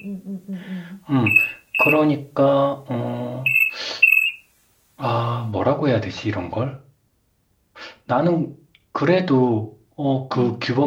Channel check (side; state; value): both; identical; correlation 1.00